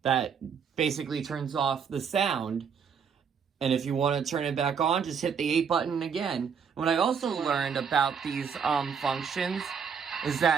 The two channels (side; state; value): left; quieter; 6.7 dB